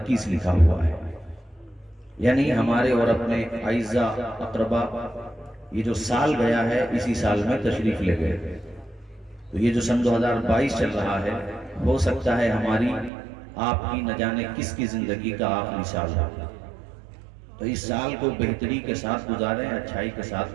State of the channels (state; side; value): drops out; left; at 13.1 s